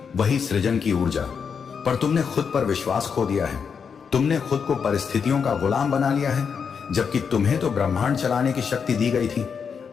वही सृजन की ऊर्जा। पर तुमने खुद पर विश्वास खो दिया है। तुमने खुद को परिस्थितियों का गुलाम बना लिया है, जबकि तुम्हें तो ब्रह्मांड चलाने की शक्ति दी गई थी।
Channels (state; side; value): quieter; right; 6.4 dB